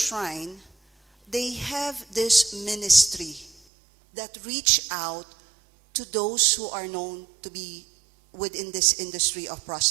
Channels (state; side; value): drops out; left; at 3.6 s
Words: they have this ministry that reach out to those who are known to be within this industry of